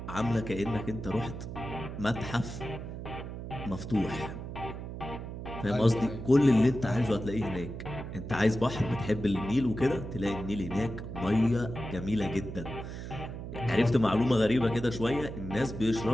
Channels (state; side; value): noise; right; hum, 8 dB below the sound